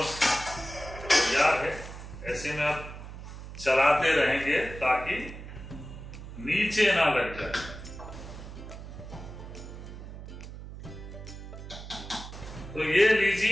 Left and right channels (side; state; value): right; noise; hum, 12 dB below the sound